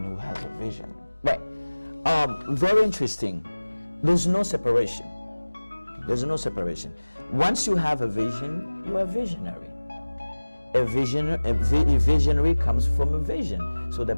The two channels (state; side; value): inverted; both; correlation -1.00